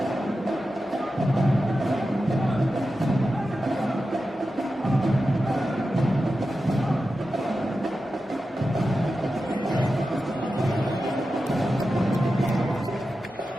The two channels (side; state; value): both; normal; correlation 0.91